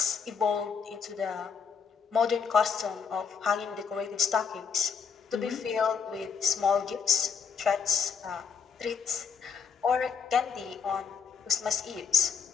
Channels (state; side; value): quieter; right; 6.3 dB